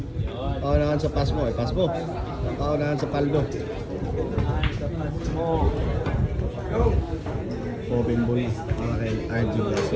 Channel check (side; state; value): both; identical; correlation 1.00